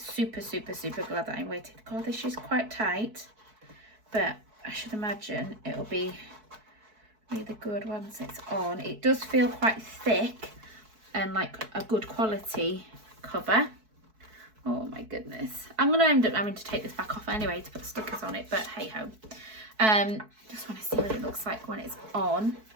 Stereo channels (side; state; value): left; late; 4.6 ms